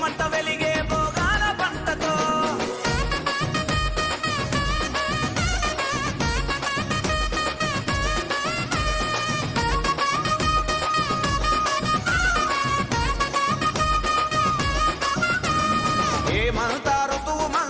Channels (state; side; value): identical; both; correlation 1.00